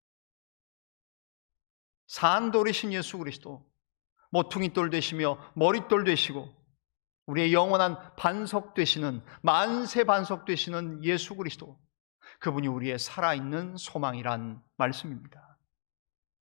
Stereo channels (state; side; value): silent; right; digital silence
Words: 산 돌이신 예수 그리스도, 모퉁이돌 되시며 머릿돌 되시고 우리의 영원한 반석 되시는, 만세 반석 되시는 예수 그리스도, 그분이 우리의 살아있는 소망이란 말씀입니다.